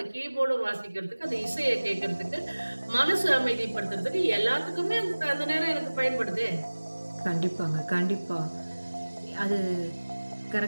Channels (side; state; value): both; inverted; correlation -1.00